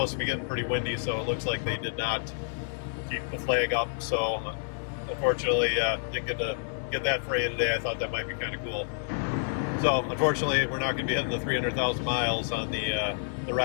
to be getting pretty windy, so it looks like they did not keep the flag up. So unfortunately, didn't get to get that for you today. I thought that might be kind of cool. So unfortunately, we're not going to be hitting the 300,000 miles on the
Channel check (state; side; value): silent; right; digital silence